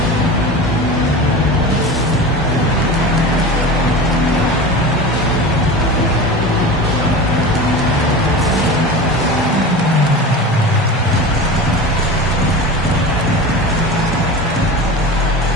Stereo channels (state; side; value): normal; both; correlation 0.31